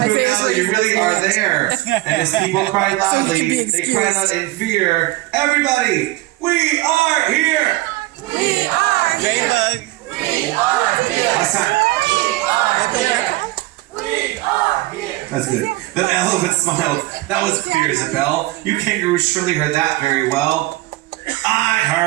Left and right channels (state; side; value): quieter; left; 19.0 dB